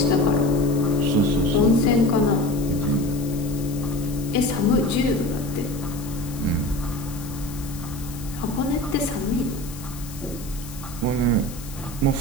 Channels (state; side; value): noise; left; hiss, 16 dB below the sound